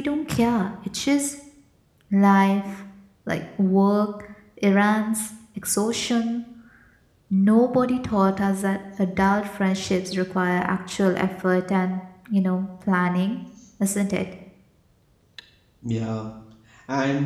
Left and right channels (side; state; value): both; identical; correlation 1.00